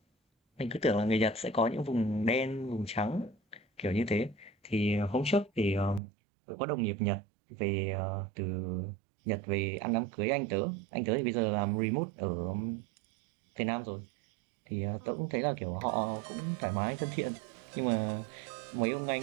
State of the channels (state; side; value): drops out; left; at 6.0 s